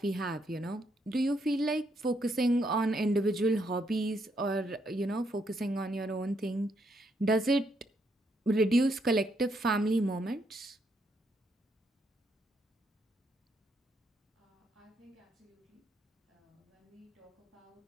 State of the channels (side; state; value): both; normal; correlation 0.75